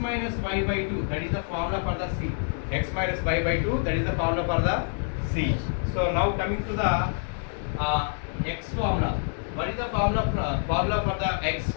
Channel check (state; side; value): silent; right; 60 dB below the other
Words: y by 2. That is the formula for the c. X minus y by 2. That is the formula for the c. So now coming to the x formula. What is the formula for the x